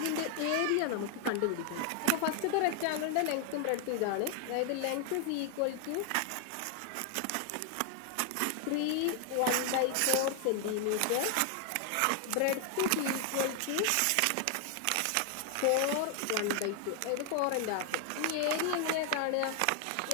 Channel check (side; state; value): both; different; correlation 0.00